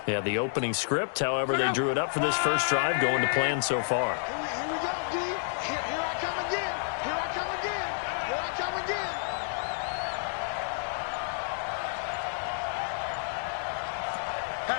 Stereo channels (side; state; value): right; silent; digital silence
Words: Yeah, the opening script, however, they drew it up for this first drive, going to plan so far. Here we go, D. Here I come again. Here I come again. Here I come again.